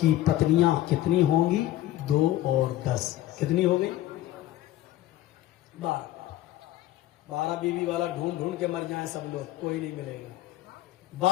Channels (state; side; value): quieter; right; 14.5 dB